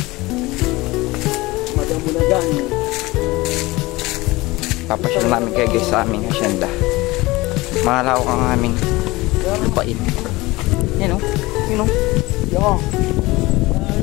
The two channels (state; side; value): quieter; right; 21.0 dB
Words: Madamulagan. Papasyal namin kayo guys sa aming hasyenda. Malawak ang aming lupain. Yan o. Yan o. Yo.